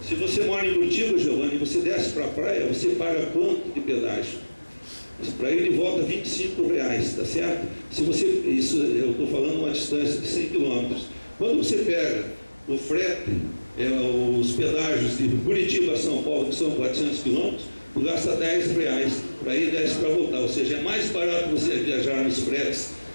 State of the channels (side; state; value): both; inverted; correlation -1.00